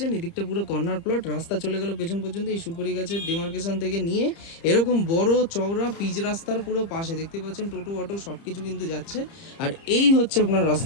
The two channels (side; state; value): right; late; 30 ms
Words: এদিকটা পুরো কর্নার প্লট, রাস্তা চলে গেল পেছন পর্যন্ত। এই সুপারি গাছের ডিমার্কেশন থেকে নিয়ে এরকম বড় চওড়া পিচ রাস্তার পুরো পাশে দেখতে পাচ্ছেন টোটো অটো সবকিছু কিন্তু যাচ্ছে। আর এই হচ্ছে আপনার